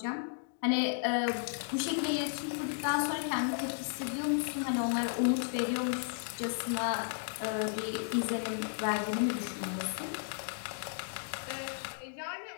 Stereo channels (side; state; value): right; silent; digital silence